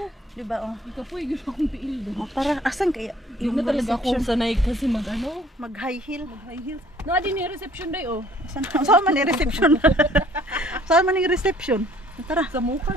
Diba, oh. Ikaw po, yung akong tiil doon. Oh, tara, asan kaya? Hindi na talaga akong sanay kasi mag-ano? Mag-high heel. Mag-high heels. Na din yung reception day, oh. Saan man yung reception? Saan man yung reception? Tara. Sa mukha.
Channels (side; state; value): both; normal; correlation 0.57